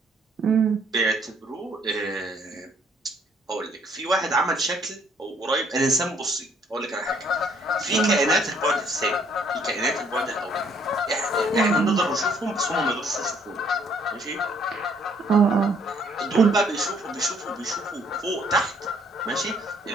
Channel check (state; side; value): normal; both; correlation 0.64